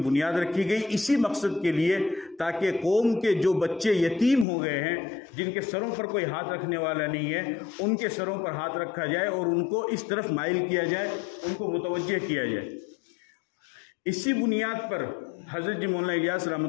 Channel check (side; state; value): right; drops out; at 4.5 s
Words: رکھی گئی اسی مقصد کے لیے، تاکہ قوم کے جو بچے یتیم ہو گئے ہیں، جن کے سروں پر کوئی ہاتھ رکھنے والا نہیں ہے، ان کے سروں پر ہاتھ رکھا جائے اور ان کو اس طرف مائل کیا جائے، ان کو متوجہ کیا جائے۔ اسی بنیاد پر حضرت مولانا الیاس